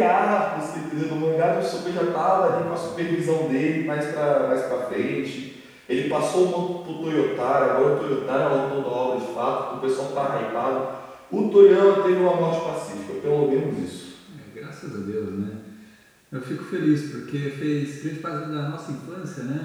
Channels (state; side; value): identical; both; correlation 1.00